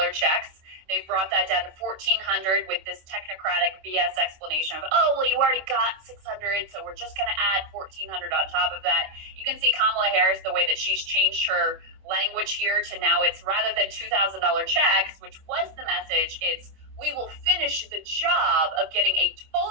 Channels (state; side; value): late; left; 26 ms